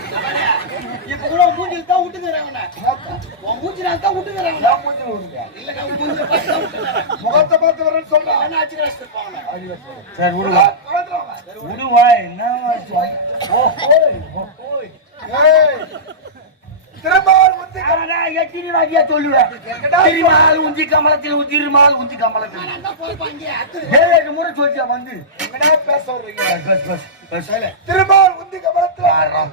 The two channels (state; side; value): normal; both; correlation -0.17